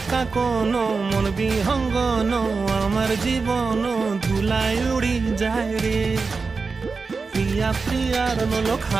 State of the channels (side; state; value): left; quieter; 4.5 dB